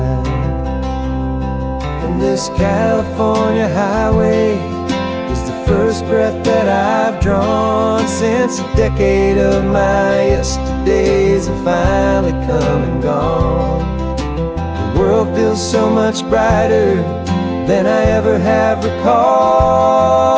And this California highway is the first breath that I've drawn since a decade of my yesterdays have finally come and gone. The world feels so much brighter than I ever have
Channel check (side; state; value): both; identical; correlation 1.00